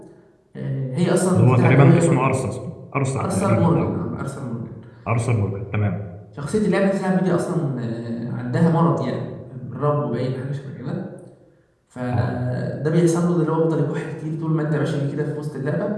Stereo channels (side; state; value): both; identical; correlation 1.00